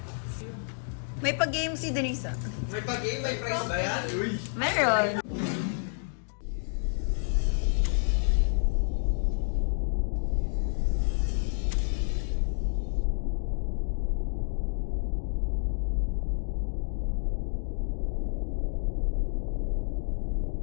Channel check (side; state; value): right; silent; digital silence